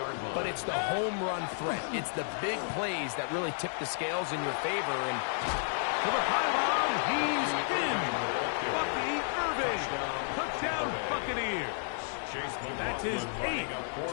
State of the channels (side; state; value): right; silent; digital silence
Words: But it's the home run threat. It's the big plays that really tip the scales in your favor. And to the pylon, he's in. Bucky Irving. Touchdown, Buccaneers. That's his 8th